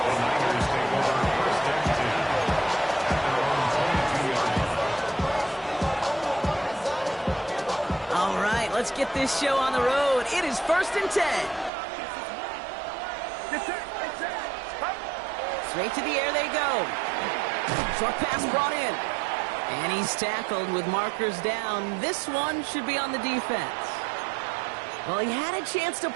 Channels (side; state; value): left; drops out; at 11.7 s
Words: All right, let's get this show on the road. It is 1st and 10. Straight to the air they go. Short pass brought in. And he's tackled with markers down. This one should be on the defense. Well, he had a chance to